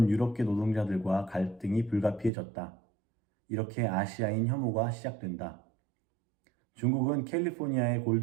유럽계 노동자들과 갈등이 불가피해졌다. 이렇게 아시아인 혐오가 시작된다. 중국은 캘리포니아의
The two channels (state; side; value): drops out; left; at 2.3 s